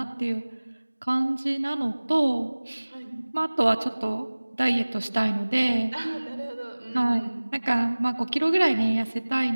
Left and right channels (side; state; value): both; inverted; correlation -1.00